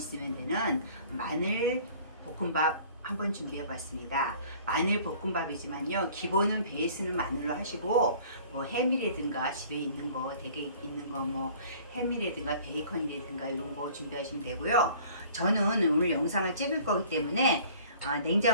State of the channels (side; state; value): both; inverted; correlation -0.51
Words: 되는 마늘 볶음밥 한번 준비해 봤습니다. 마늘 볶음밥이지만요 기본은 베이스는 마늘로 하시고 뭐 햄이라든가 집에 있는 거 되게 있는 거 뭐 햄이라든가 베이컨이라든가 이런 거 준비하시면 되고요. 저는 오늘 영상을 찍을 거기 때문에